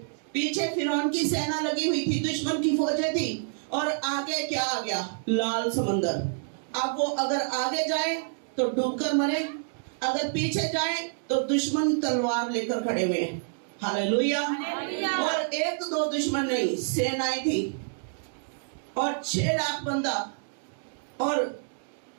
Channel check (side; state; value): left; silent; digital silence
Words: पीछे फिरौन की सेना लगी हुई थी, दुश्मन की फौजें थी, और आगे क्या आ गया? लाल समंदर। अब वो अगर आगे जाए तो डूबकर मरे, अगर पीछे जाए तो दुश्मन तलवार लेकर खड़े हुए हैं। हालेलुया। और एक दो दुश्मन नहीं, सेनाएं थी और 6 लाख बंदा, और